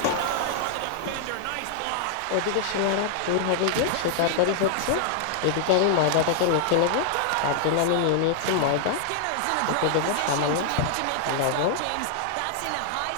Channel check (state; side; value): different; both; correlation 0.00